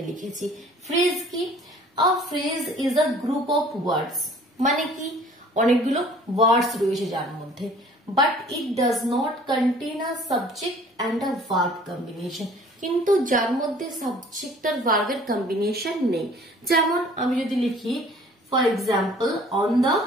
লিখেছি। ফ্রেজ কি? আ phrase is a group of ওয়ার্ডস, মানে কি অনেকগুলো ওয়ার্ডস রয়েছে যার মধ্যে, but it does not contain a subject and a verb combination, কিন্তু যার মধ্যে সাবজেক্ট আর ভার্বের কম্বিনেশন নেই। যেমন আমি যদি লিখি for example on the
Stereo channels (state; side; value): normal; both; correlation 0.52